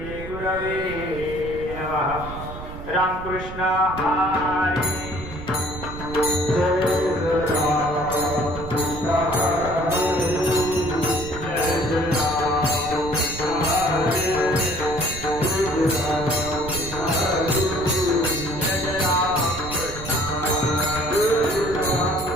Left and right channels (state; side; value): noise; right; rumble, 11 dB below the sound